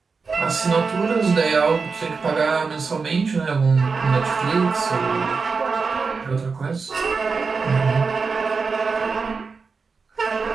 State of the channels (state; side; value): quieter; left; 4.8 dB